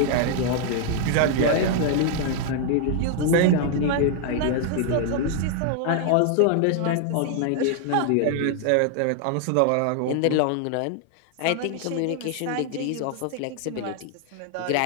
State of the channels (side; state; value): both; different; correlation 0.00